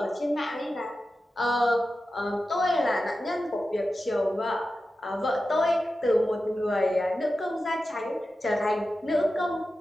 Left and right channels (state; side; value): normal; both; correlation 0.92